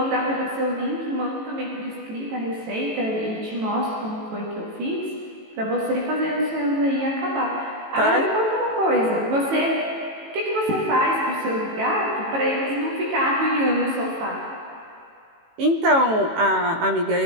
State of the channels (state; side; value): late; left; 18 ms